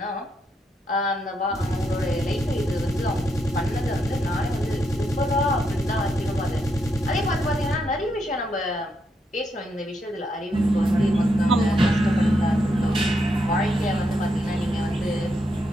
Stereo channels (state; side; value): normal; both; correlation 0.80